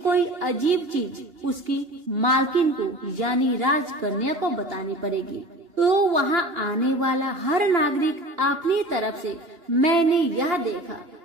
अजीब चीज उसकी मालकिन को यानी राजकन्या को बतानी पड़ेगी। तो वहाँ आने वाला हर नागरिक अपनी तरफ से मैंने यह देखा,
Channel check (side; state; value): left; late; 2.9 ms